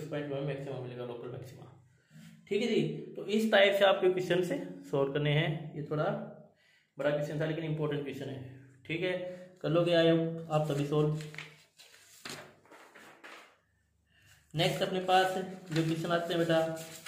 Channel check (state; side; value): identical; both; correlation 1.00